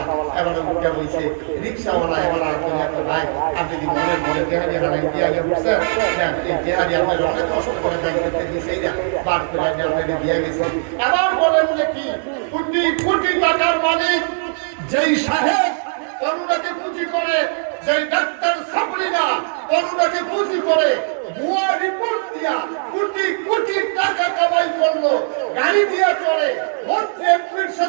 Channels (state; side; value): silent; left; 65 dB below the other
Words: এবার উঠে বইছে রিক্সাওয়ালা, এবার ভাই আপনি কি মনের মনে দেহারি হারাই দিয়ে আগে বুঝছেন, এই দেহারি আপনার অনেক কষ্ট করে ব্যাংক করতে দিয়েছে, এইটা বার করে আপনাকে দিয়ে গেছে। এবার বলেন যে কি কোটি কোটি টাকার মালিক যেই সাহেব করুণাকে পুঁজি করে, যেই ডাক্তার সাবরিনা করুণাকে পুঁজি করে ভুয়া রিপোর্ট দিয়া কোটি কোটি টাকা কামাই করলো, গাড়ি দিয়া চলে, মন্ত্রী এমপির